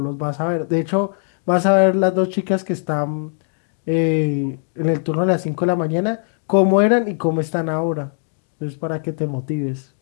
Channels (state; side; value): silent; right; digital silence